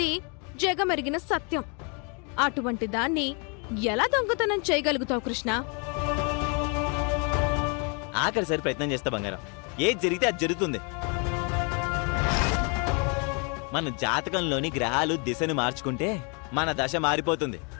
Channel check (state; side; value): quieter; right; 35.3 dB